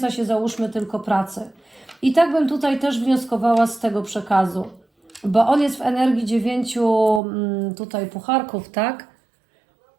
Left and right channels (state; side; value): drops out; left; at 7.2 s